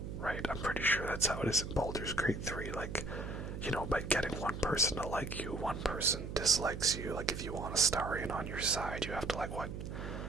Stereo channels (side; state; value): right; noise; hum, 6 dB below the sound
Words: right? I'm pretty sure that's how it is in Baldur's Gate 3. Like, by getting one person to like you, one person dislikes you. Like, if you want a Starion on your side, you have to, like, what?